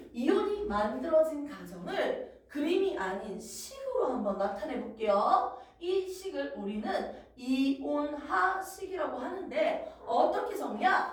이온이 만들어진 과정을 그림이 아닌 식으로 한번 나타내 볼게요. 이 식을 우리는 이온화식이라고 하는데 어떻게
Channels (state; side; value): identical; both; correlation 1.00